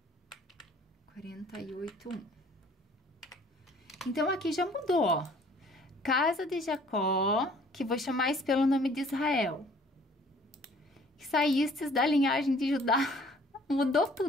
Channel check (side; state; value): both; normal; correlation 0.56